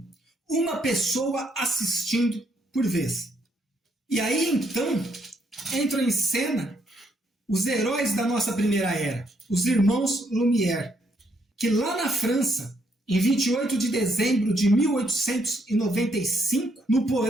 uma pessoa assistindo por vez. E aí então entram em cena os heróis da nossa primeira era, os irmãos Lumière, que lá na França, em 28 de dezembro de 1895, no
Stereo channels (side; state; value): both; normal; correlation 0.74